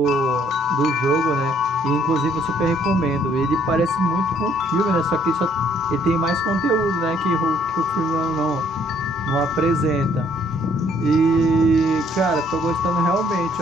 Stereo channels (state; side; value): normal; both; correlation 0.64